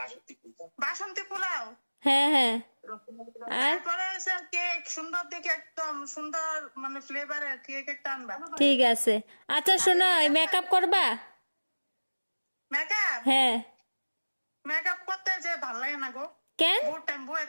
বাসন্তী পোলাও। হ্যাঁ হ্যাঁ। আর তারপরে হচ্ছে কেক, সুন্দর দেখে একদম সুন্দর মানে ফ্লেভারের কেক একটা আনবা। ঠিক আছে। আচ্ছা শোনো, মেকআপ করবা? মেকআপ? হ্যাঁ। মেকআপ করতে যে ভাল লাগে না গো, কেন? বহুত টাইম বয়ে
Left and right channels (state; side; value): inverted; both; correlation -1.00